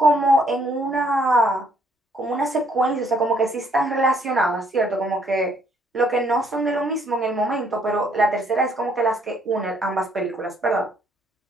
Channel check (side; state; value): both; normal; correlation 0.66